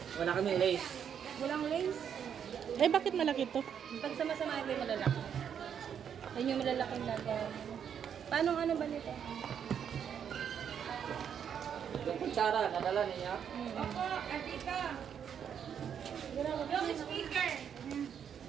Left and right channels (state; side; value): quieter; left; 8.2 dB